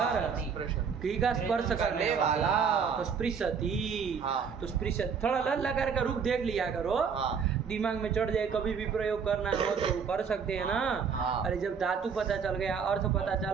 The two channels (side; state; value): left; quieter; 6.3 dB